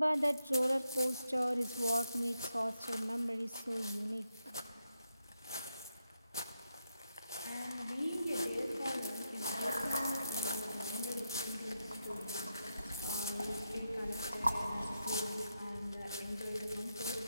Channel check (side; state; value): both; inverted; correlation -0.85